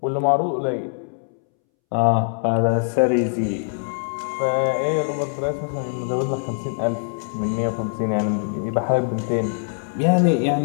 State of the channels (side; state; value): right; silent; 64 dB below the other